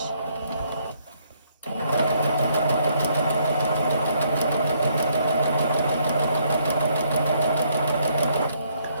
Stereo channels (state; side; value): inverted; both; correlation -0.70